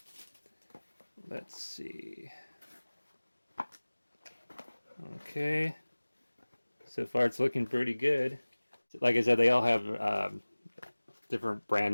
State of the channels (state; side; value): inverted; both; correlation -1.00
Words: Let's see. Okay. So far it's looking pretty good. Like I said, they all have different brand